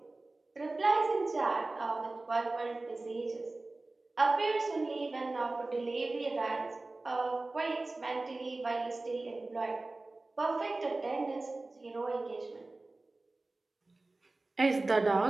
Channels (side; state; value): left; quieter; 3.1 dB